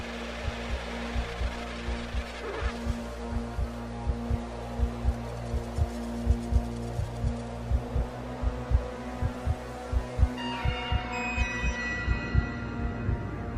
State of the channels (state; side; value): identical; both; correlation 1.00